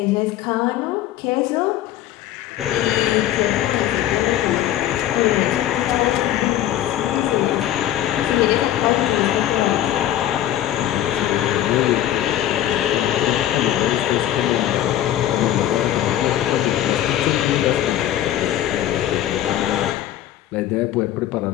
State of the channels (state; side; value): quieter; right; 12.4 dB